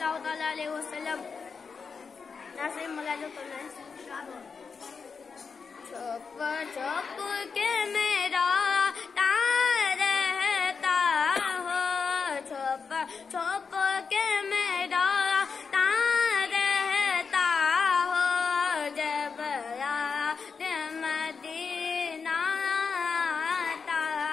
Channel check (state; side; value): quieter; right; 5.4 dB